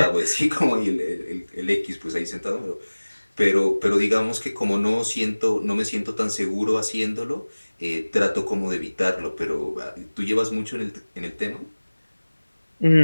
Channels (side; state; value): both; inverted; correlation -1.00